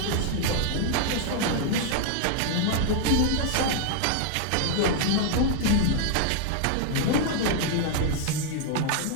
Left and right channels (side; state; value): both; different; correlation 0.00